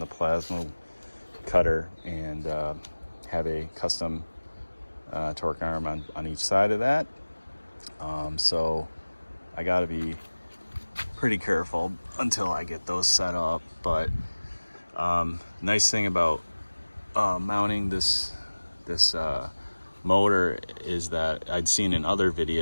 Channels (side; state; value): both; inverted; correlation -1.00